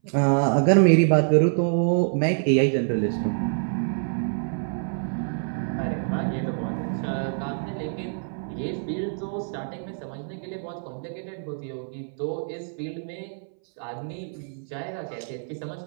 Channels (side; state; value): left; silent; 61 dB below the other